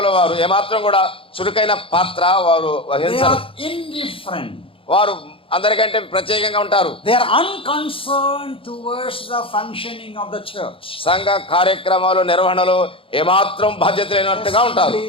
వారు ఏమాత్రం కూడా చురుకైన పాత్ర వారు They వహించరు. are indifferent. వారు అందరికంటే ప్రత్యేకంగా ఉంటారు. They are unconcerned towards the functioning of the church. సంఘ కార్యక్రమాలు నిర్వహణలో ఏమాత్రం బాధ్యత లేనట్టుగా ఉంటారు.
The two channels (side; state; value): right; late; 0.26 ms